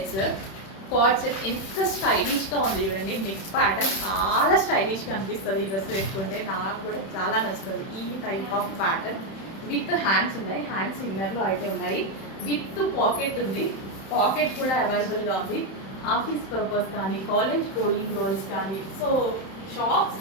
Card set ఎంత స్టైలిష్గా ఉంది చూడండి. నెక్ ప్యాటర్న్ చాలా స్టైలిష్గా అనిపిస్తుంది. ఈ డ్రెస్ వేసుకుంటే నాకు కూడా చాలా నచ్చుతుంది. ఈ type of pattern with hands ఉన్నాయి, హ్యాండ్స్ ఇన్నర్లో అయితే ఉన్నాయి. విత్ పాకెట్ ఉంది, పాకెట్ కూడా అవైలబుల్గా ఉంది. ఆఫీస్ పర్పస్ కానీ, కాలేజ్ గోయింగ్ గర్ల్స్ కానీ, సో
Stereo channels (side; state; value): right; late; 31 ms